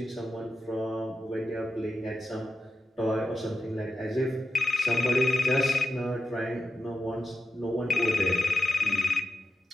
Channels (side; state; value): both; normal; correlation 0.89